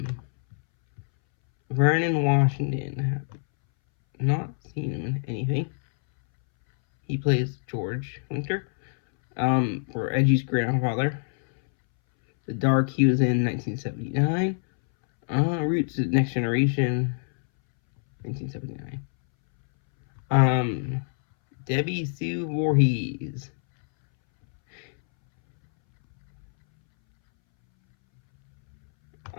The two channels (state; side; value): silent; right; 62 dB below the other